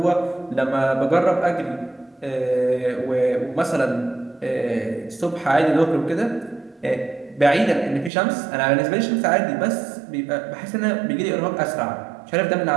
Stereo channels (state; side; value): drops out; left; at 8.1 s